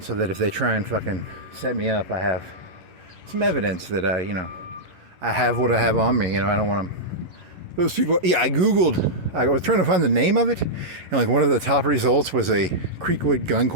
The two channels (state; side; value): late; left; 11 ms